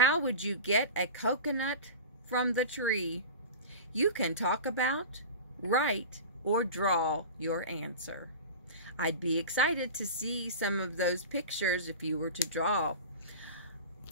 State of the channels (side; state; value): both; inverted; correlation -0.31